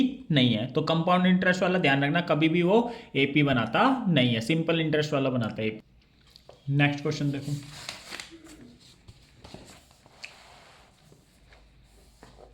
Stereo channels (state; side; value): identical; both; correlation 1.00